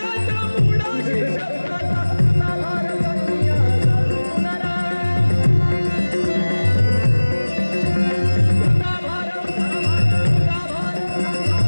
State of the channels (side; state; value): both; inverted; correlation -1.00